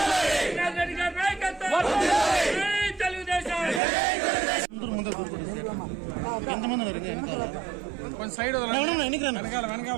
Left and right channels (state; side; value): drops out; left; at 3.8 s